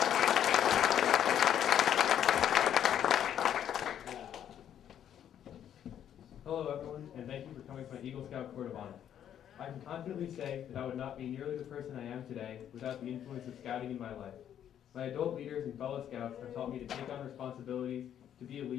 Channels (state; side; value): quieter; right; 9.9 dB